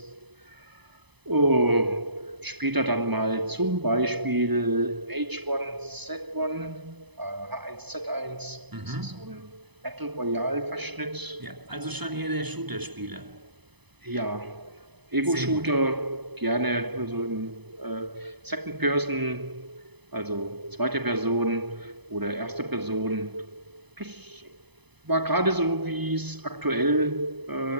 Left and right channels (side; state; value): left; late; 0.99 ms